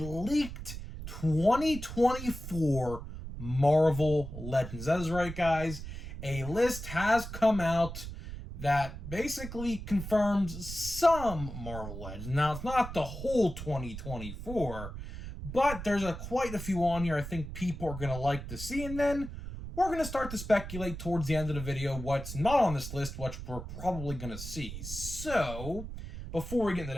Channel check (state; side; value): noise; right; rumble, 9 dB below the sound